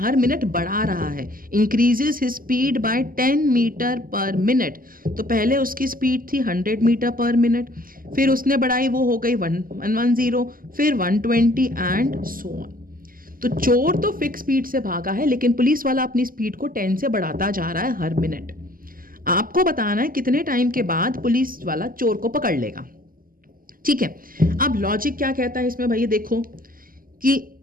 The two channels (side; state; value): left; late; 0.41 ms